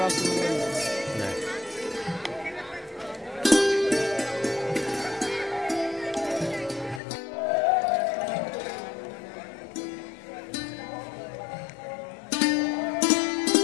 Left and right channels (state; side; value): drops out; right; at 7.0 s